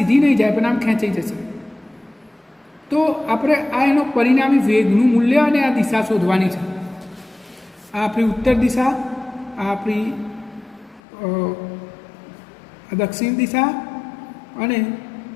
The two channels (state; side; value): drops out; right; at 11.0 s